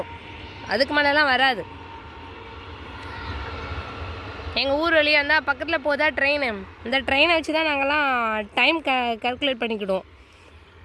அதுக்கு மேலெலாம் வராது. எங்கள் ஊர் வழியாக இருந்தால் பக்கத்தில் போதா ட்ரெயின். இந்த ட்ரெயினை வச்சு தான் நாங்கள்லாம் டைம் கால்குலேட் பண்ணிக்கிடுவோம்.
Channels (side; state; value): both; identical; correlation 1.00